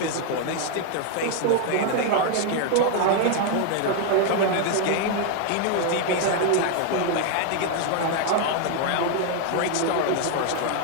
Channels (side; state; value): both; different; correlation 0.00